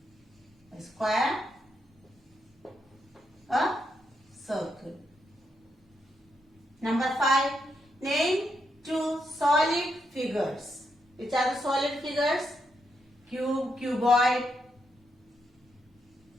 A square, a circle. Number 5, name 2 solid figures. Which are the solid figures? Cube, cuboid,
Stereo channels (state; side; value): normal; both; correlation 0.80